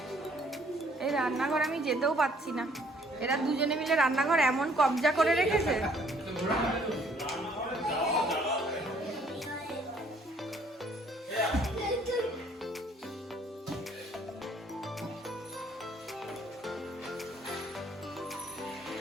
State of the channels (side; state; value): both; normal; correlation 0.62